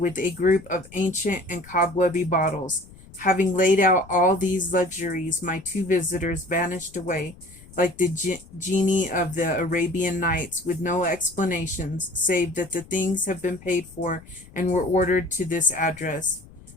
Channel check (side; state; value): left; noise; rumble, 22 dB below the sound